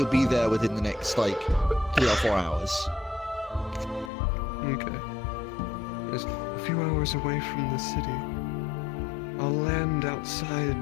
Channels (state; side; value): drops out; right; at 4.1 s